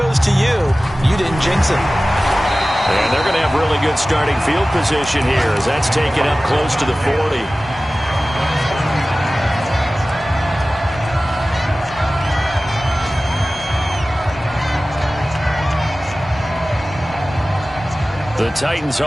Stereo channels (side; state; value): both; normal; correlation 0.97